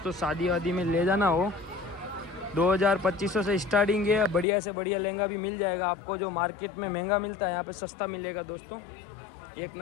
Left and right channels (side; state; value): right; drops out; at 4.5 s